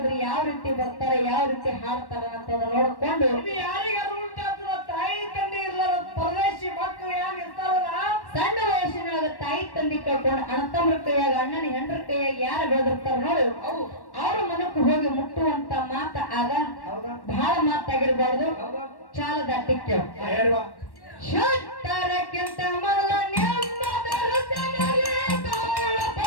ಯಾವ ರೀತಿ ಬರ್ತಾರೆ ಯಾವ ರೀತಿ ಹಾಡ್ತಾರ ಅಂತ ನೋಡ್ಕೊಂಡು ಇದು ಯಾರಿಗಾರು ಉಂಟಾಗ್ತದ ತಾಯಿ ತಂದೆ ಇರ್ಲಾರ ಪರದೇಶಿ ಮಕ್ಕಳು ಯಾರು ಇರ್ತಾರಲ್ಲ ಸಣ್ಣ ವಯಸ್ಸಿನೊಳಗ ತಾಯಿ ತಂದೆ ಕಳ್ಕೊಂಡು ಅಣ್ಣತಮ್ಮರ ಕೈಯಾಗ ಅಣ್ಣನ ಹೆಂಡ್ರ ಕೈಯಾಗ ಯಾರು ಬೆಳೆದಿರ್ತಾರ ನೋಡಿ ಅವ್ರ ಮನಕ್ಕೆ ಹೋಗಿ ಮುಟ್ಟುವಂತ ಮಾತ ಆಗ ಬಹಳ ಮಾತಾಗಿರ್ಬಾರ್ದು. ಚಾಲದ ಅಟ್ಟಿಕ್ಕೆ ಶುದ್ಧರಕ್ಕಿಂತ ಮೊದಲ ನೆಮ್ಮದ ಹೃದಯದಲ್ಲಿ ತೋಳ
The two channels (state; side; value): late; right; 1.1 ms